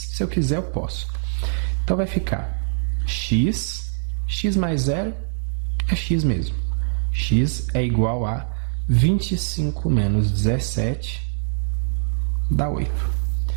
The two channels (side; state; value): left; silent; digital silence